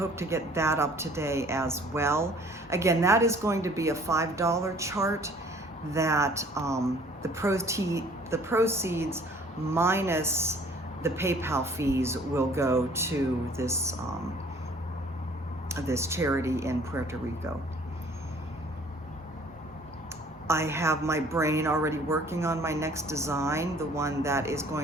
to get that up today as well. Again, that is going to be a $5 chart that the proceeds minus the PayPal fees will go to this, this charity in Puerto Rico. I have my brain already working on my next design, the one that is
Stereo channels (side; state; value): both; normal; correlation 0.54